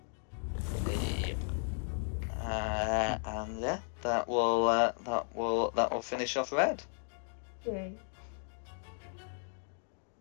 And yeah, that will finish off red. Okay.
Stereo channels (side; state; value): right; silent; 54 dB below the other